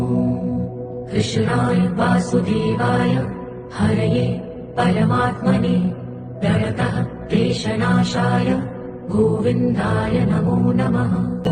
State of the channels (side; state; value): both; identical; correlation 1.00